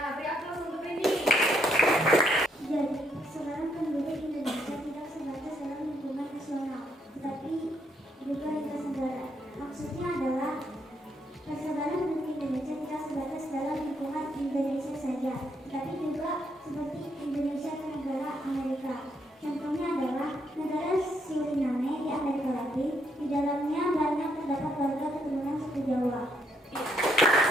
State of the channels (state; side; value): normal; both; correlation 0.74